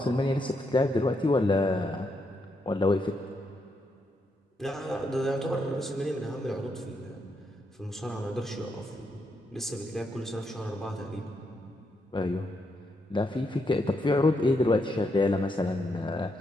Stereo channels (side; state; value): both; normal; correlation 0.80